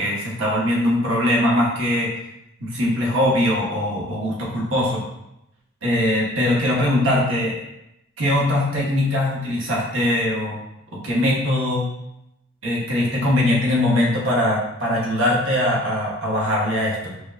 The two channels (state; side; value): normal; both; correlation 0.53